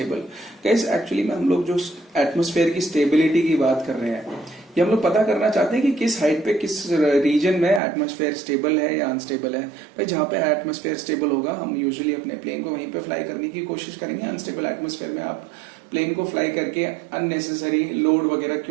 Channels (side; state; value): left; drops out; at 7.8 s